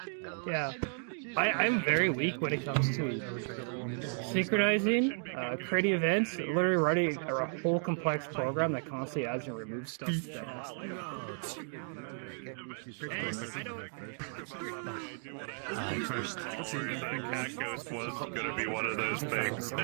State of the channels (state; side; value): silent; left; 55 dB below the other